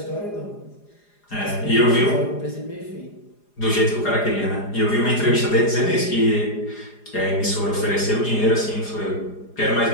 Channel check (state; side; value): late; right; 4.9 ms